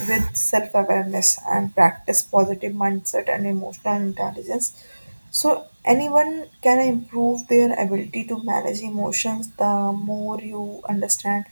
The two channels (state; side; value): inverted; both; correlation -1.00